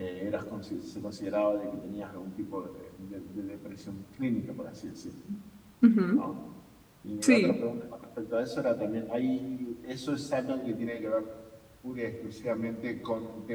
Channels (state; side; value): identical; both; correlation 1.00